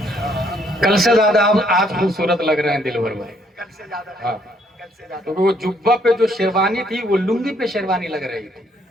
کل سے زیادہ آپ آج خوبصورت لگ رہے ہیں دلبر بھائی. کل سے زیادہ, ہاں, کل سے زیادہ. کیونکہ وہ جبہ پہ جو شیروانی تھی وہ لنگی پہ شیروانی لگ رہی تھی,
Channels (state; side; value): normal; both; correlation 0.68